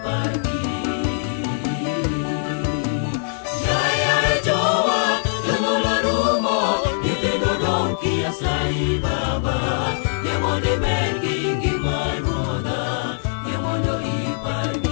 Yaye jowa jonyuol orumo, nyithindo dong' kia sai Baba. Yie mondo imed gi ngima Ruodha, yie mondo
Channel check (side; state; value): right; silent; 58 dB below the other